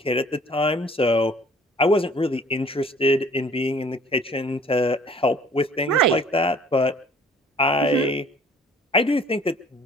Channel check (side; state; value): both; normal; correlation 0.54